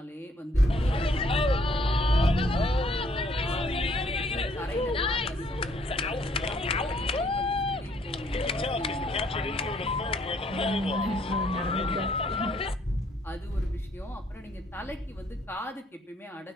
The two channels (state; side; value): normal; both; correlation 0.66